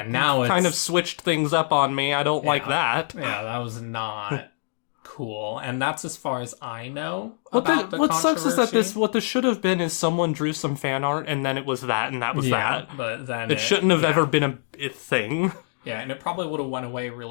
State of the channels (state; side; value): silent; right; digital silence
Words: of switched things up on me. I don't like that. Yeah, that was not cool. And that's as far as I know. What sucks is that what this should have been is someone drew some fan art and then it was that and that was that. But then it shouldn't have ever been a thing. Yeah, and it probably would have went away